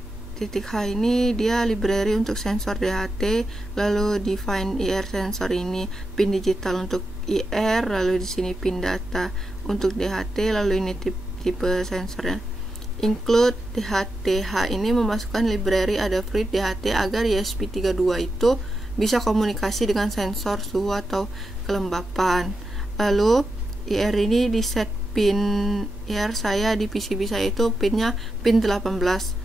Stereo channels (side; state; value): both; normal; correlation 0.88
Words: ini dia library untuk sensor DHT, lalu define IR sensor ini pin digital untuk IR, lalu di sini pin data untuk DHT, lalu ini tipe sensornya. Include DHT-H ini memasukkan library Adafruit DHT agar ESP32 itu bisa komunikasi dengan sensor suhu atau kelembapan. Lalu IR ini di set pin IR saya di PCB saya itu pinnya pin 18.